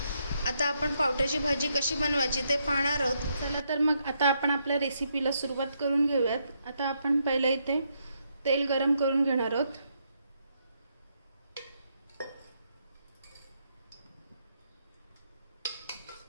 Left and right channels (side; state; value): both; inverted; correlation -0.77